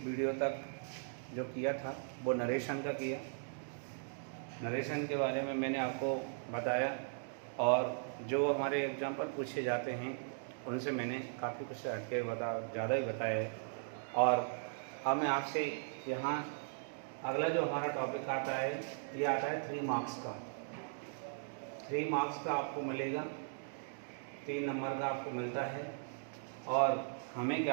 video तक जो किया था वो नरेशन का किया। नरेशन के बारे में मैंने आपको बताया और जो हमारे एग्जाम पर पूछे जाते हैं उनसे मैंने काफ़ी कुछ हटके ज़्यादा ही बताया है। और अब मैं आपसे यहाँ अगला जो हमारा टॉपिक आता है ये आता है 3 मार्क्स का। 3 मार्क्स का आपको मिलेगा, 3 नंबर का आपको मिलता है। और हमें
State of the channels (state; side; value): silent; left; digital silence